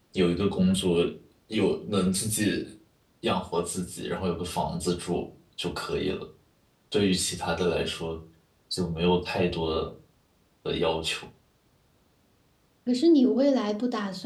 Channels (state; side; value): identical; both; correlation 1.00